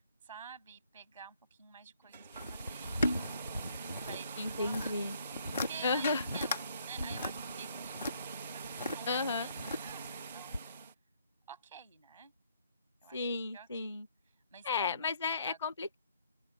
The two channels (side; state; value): both; inverted; correlation -0.67